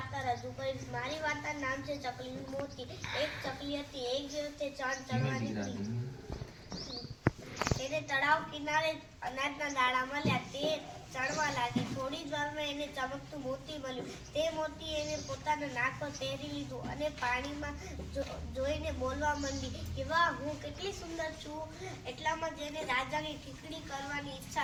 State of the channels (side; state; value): both; identical; correlation 1.00